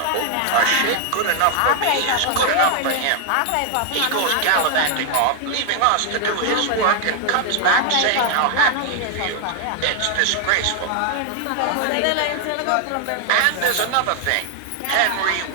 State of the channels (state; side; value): different; both; correlation 0.00